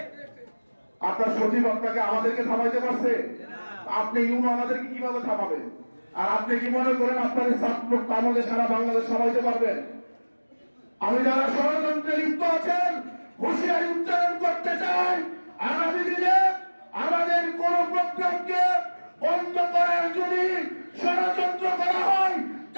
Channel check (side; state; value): both; inverted; correlation -1.00